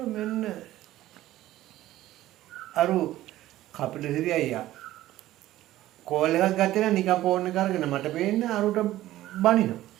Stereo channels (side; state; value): left; quieter; 14.9 dB